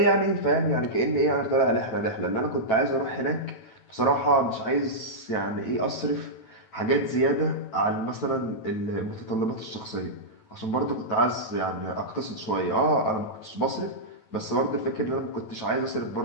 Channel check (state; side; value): late; right; 9.1 ms